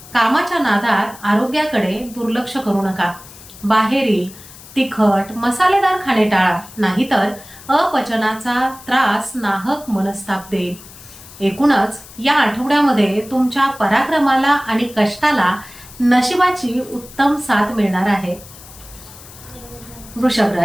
कामाच्या नादात आरोग्याकडे दुर्लक्ष करू नका। बाहेरील तिखट मसालेदार खाणे टाळा, नाहीतर अपचनाचा त्रास नाहक मनस्ताप देईल। एकूणच या आठवड्यामध्ये तुमच्या पराक्रमाला आणि कष्टाला नशिबाची उत्तम साथ मिळणार आहे। वृषभ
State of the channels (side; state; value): left; noise; hiss, 19 dB below the sound